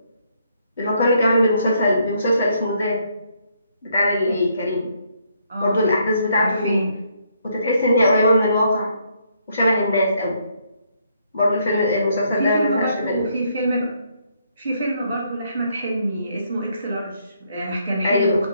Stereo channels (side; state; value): both; inverted; correlation -0.72